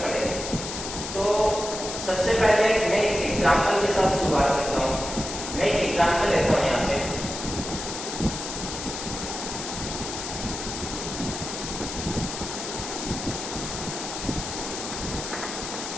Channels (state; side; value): noise; left; hiss, 6 dB below the sound